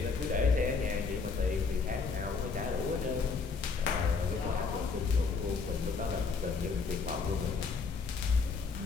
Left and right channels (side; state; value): right; quieter; 4.8 dB